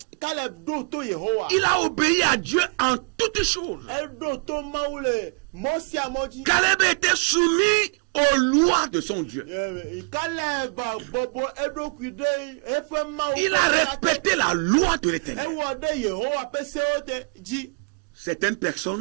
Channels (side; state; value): left; quieter; 36.3 dB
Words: a obéi à Dieu en toutes choses. Caleb était soumis aux lois de son Dieu. Il a respecté la loi de l'Éternel. Certaines